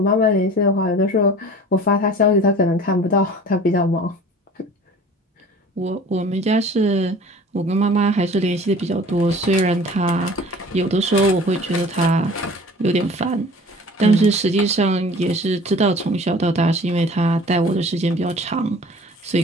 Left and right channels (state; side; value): normal; both; correlation 0.45